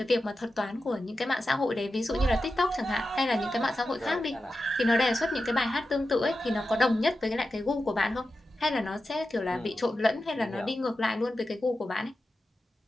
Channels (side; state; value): both; normal; correlation 0.92